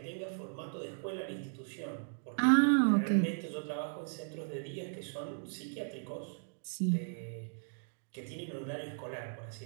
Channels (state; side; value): silent; left; digital silence